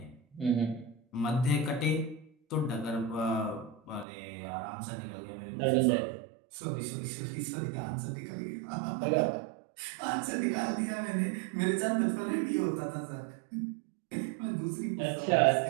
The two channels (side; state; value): left; drops out; at 4.0 s